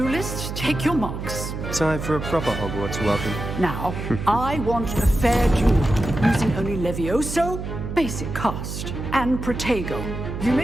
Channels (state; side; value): noise; right; hum, 6 dB below the sound